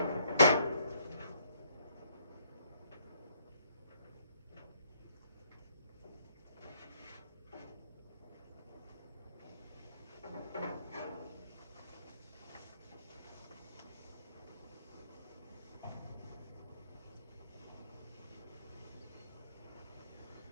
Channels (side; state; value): both; inverted; correlation -0.68